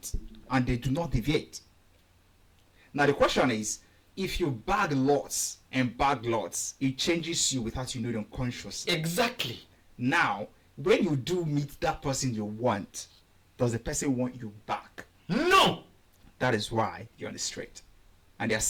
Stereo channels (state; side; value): identical; both; correlation 1.00